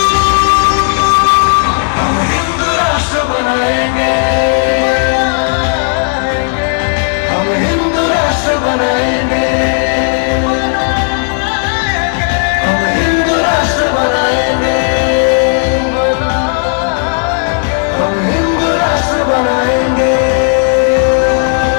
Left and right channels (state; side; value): silent; right; 61 dB below the other